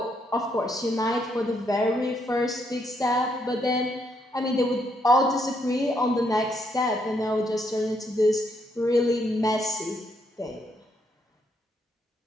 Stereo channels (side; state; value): both; normal; correlation 0.75